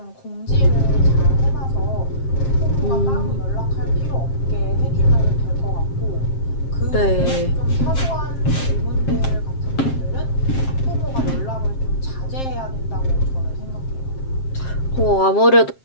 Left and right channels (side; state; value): right; late; 7.5 ms